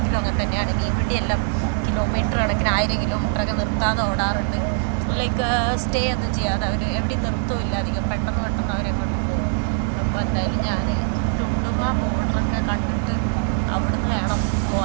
അങ്ങനെ തന്നെയാണ്. മീൻ വണ്ടിയെല്ലാം കിലോമീറ്റർ കണക്കിന് 1000 കിലോമീറ്ററൊക്കെ നിർത്താതെ ഓടാറുണ്ട്. ലൈക്ക് സ്റ്റേ ഒന്നും ചെയ്യാതെ അവർ എവിടെയും നിർത്തുമില്ല അധികം. പെട്ടെന്ന് അവരെങ്ങോട്ട് പോകും. അപ്പോൾ എന്തായാലും ഞാൻ ടുണ്ടുമ ബോർഡറൊക്കെ കണ്ടിട്ട് അവിടുന്ന് വേണം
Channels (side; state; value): left; silent; digital silence